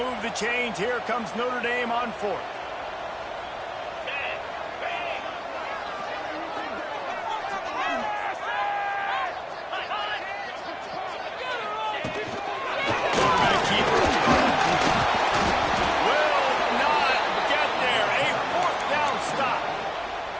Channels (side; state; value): both; identical; correlation 1.00